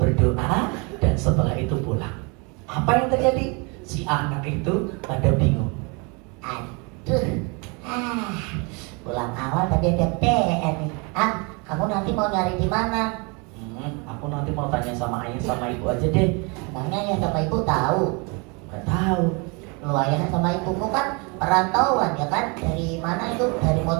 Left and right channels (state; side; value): quieter; left; 31.3 dB